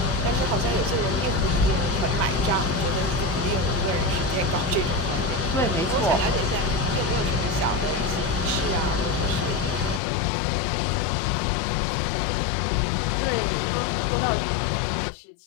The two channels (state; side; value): drops out; right; at 10.0 s